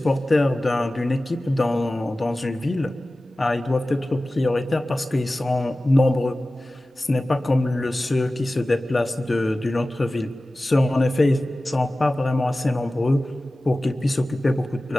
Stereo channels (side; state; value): both; normal; correlation 0.96